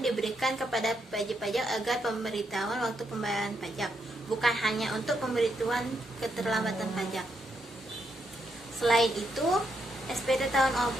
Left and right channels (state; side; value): normal; both; correlation 0.79